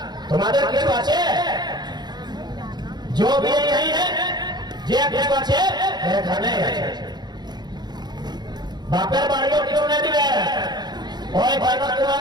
तुम्हारे किस पाछे जो भी यही है जे किस पाछे बापेर बाड़ियों क्यों नहीं दिवे ओए भाई तुआ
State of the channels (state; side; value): late; left; 0.20 ms